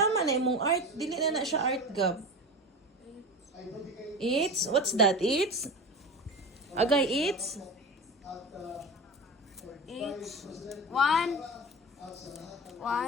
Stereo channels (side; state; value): both; normal; correlation 0.29